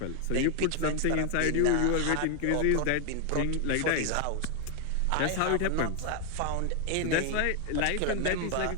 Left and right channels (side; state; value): both; different; correlation 0.00